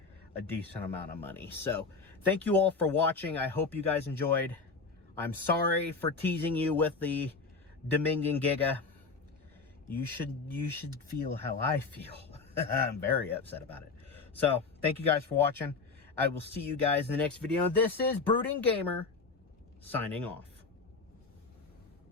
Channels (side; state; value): right; quieter; 4.4 dB